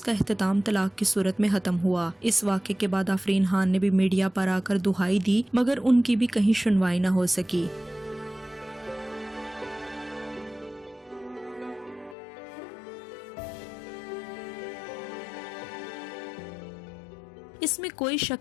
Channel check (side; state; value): right; drops out; at 12.2 s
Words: इख्तिताम तलाक की सूरत में खत्म हुआ। इस वाक़े के बाद आफरीन खान ने भी मीडिया पर आकर दुहाई दी, मगर उनकी भी कहीं सुनवाई न हो सकी। इसमें कोई